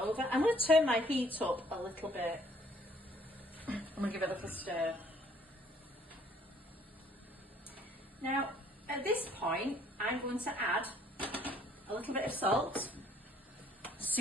I'm going to turn my heat up a little bit. I'm going to give it a little stir. Now, at this point, I'm going to add a little bit of salt,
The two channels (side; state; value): both; normal; correlation 0.61